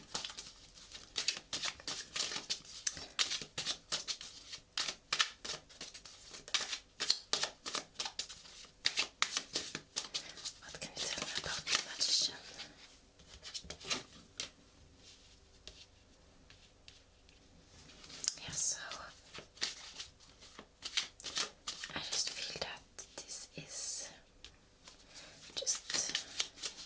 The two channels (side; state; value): both; identical; correlation 1.00